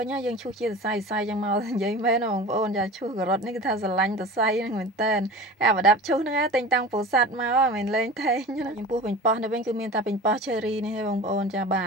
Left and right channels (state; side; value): normal; both; correlation 0.35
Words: ិញយើងឈូសជាសរសៃចឹងមកនិយាយមែនបងប្អូនចាឈូសការ៉ុតនេះគឺថាស្រឡាញ់សរសៃហ្នឹងមែនតើអាប្រដាប់ឈូសហ្នឹងតែងតាំងពោធិ៍សាត់មកមិនលេងថេងណាចំពោះប៉េងប៉ោះនេះវិញគឺមានតែប៉េងប៉ោះ cherry នេះទេបងប្អូនចាបា